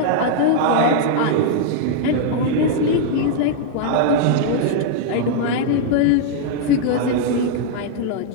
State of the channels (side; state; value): both; different; correlation -0.01